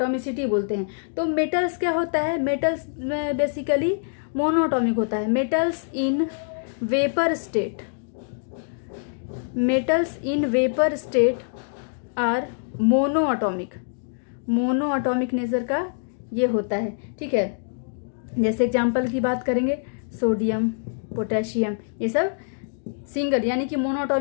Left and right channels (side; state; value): right; silent; digital silence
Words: बोलते हैं। तो मेटल्स क्या होता है, मेटल्स में बेसिकली मोनोएटॉमिक होता है। Metals in vapour state, metals in vapour state are monoatomic, monoatomic nature का ये होता है। ठीक है। जैसे एग्जांपल की बात करेंगे, सोडियम, पोटेशियम, ये सब सिंगल यानी कि